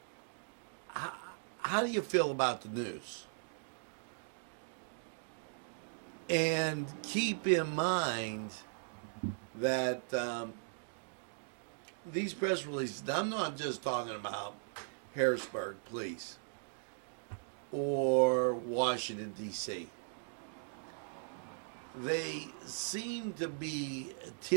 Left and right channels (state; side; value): silent; left; digital silence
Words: how do you feel about the news? And keep in mind that these press releases, I'm not just talking about Harrisburg, please, or Washington, D.C. They seem to be